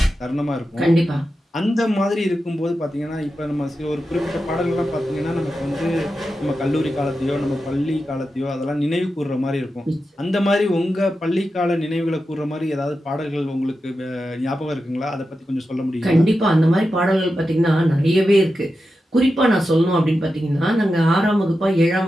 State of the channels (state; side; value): normal; both; correlation 0.90